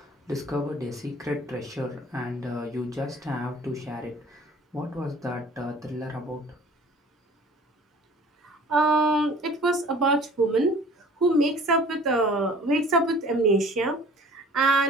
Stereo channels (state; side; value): normal; both; correlation 0.48